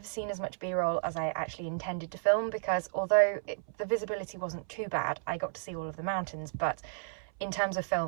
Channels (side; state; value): left; silent; 56 dB below the other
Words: seen as much B-roll as I actually intended to film, because although the visibility wasn't too bad, I got to see all of the mountains, but in terms of